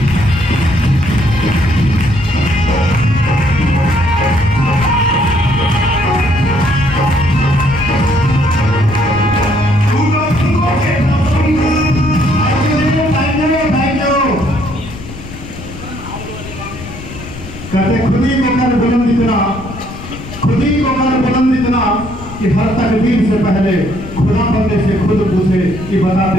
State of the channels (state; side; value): noise; left; rumble, 13 dB below the sound